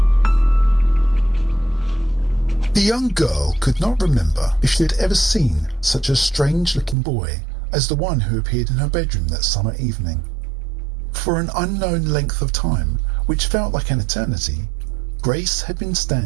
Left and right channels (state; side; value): drops out; left; at 7.0 s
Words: The young girl could not remember if she had ever seen such a strange-looking boy as the one who appeared in her bedroom that summer evening. For an unknown length of time, which felt like an eternity, Grace had been